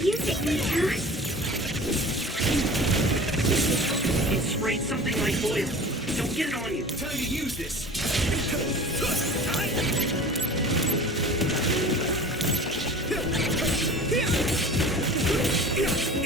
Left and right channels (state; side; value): normal; both; correlation 0.40